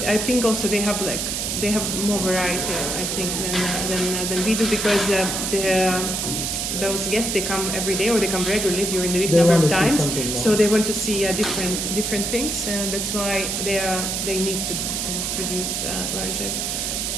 I think also they have more variety, I think, than we do, because those guests, they come every day or they come regularly during the week number of times. So they want to see different things, and that's why they need to produce larger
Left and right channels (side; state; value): right; noise; hiss, 1 dB below the sound